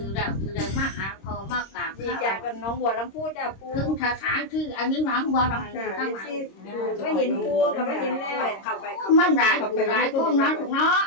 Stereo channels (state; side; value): late; right; 26 ms